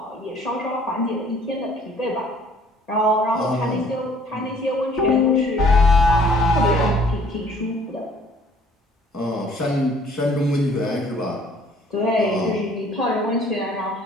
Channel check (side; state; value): both; normal; correlation 0.57